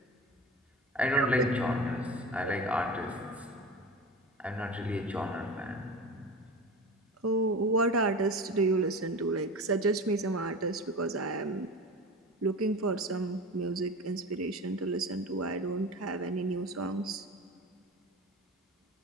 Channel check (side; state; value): both; normal; correlation 0.31